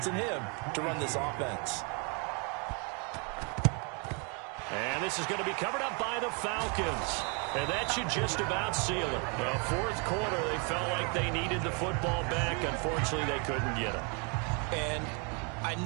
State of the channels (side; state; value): left; quieter; 34.8 dB